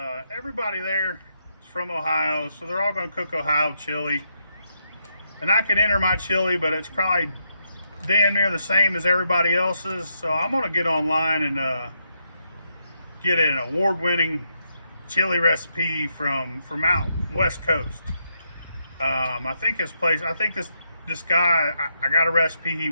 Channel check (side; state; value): both; inverted; correlation -0.80